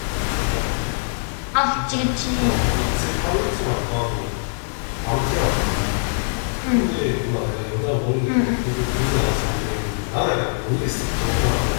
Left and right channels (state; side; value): silent; right; digital silence